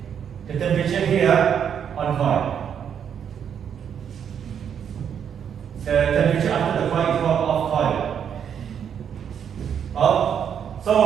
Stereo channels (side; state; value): left; quieter; 8.2 dB